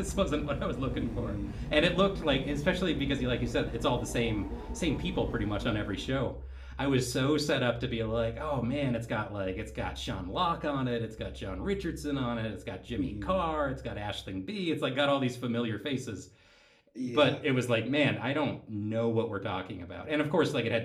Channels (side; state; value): both; identical; correlation 1.00